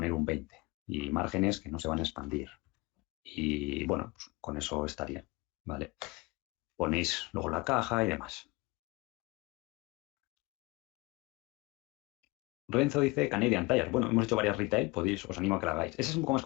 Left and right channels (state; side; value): quieter; right; 23.9 dB